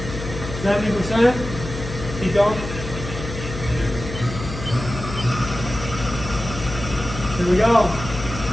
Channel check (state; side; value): noise; left; hum, 9 dB below the sound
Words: 70%. Keep going. Here we go.